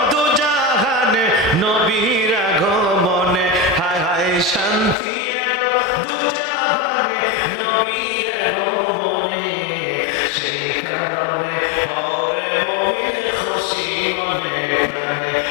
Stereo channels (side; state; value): right; drops out; at 5.0 s